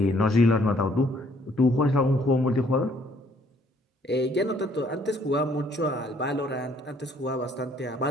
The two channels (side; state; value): both; normal; correlation 0.63